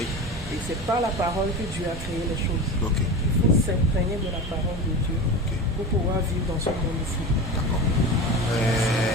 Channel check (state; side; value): normal; both; correlation 0.28